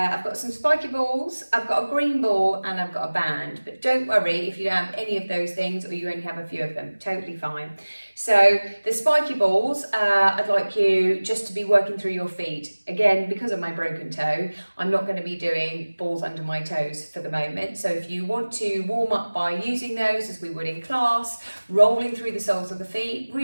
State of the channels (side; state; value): both; inverted; correlation -1.00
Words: got some spiky balls, I've got a green ball and I've got a band, but don't worry if you don't have any of those things or you only have a few of them, totally fine. So the spiky balls, I'd like you just to be working through your feet. Again, because of my broken toe, I'm not going to be doing balls under my toes for the moment. So if you want to warm up by using those as we would in class, rolling through the soles of the feet,